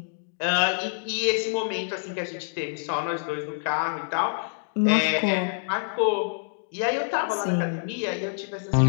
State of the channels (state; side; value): silent; right; digital silence